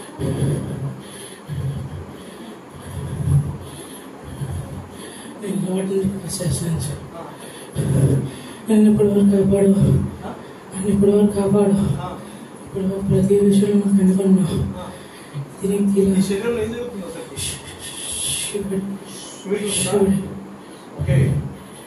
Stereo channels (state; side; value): identical; both; correlation 1.00